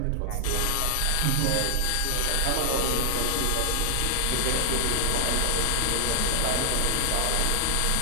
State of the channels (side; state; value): both; different; correlation 0.00